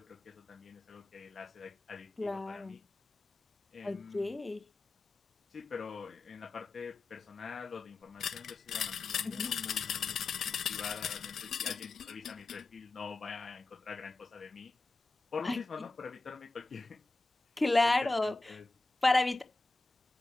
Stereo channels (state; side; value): quieter; right; 3.3 dB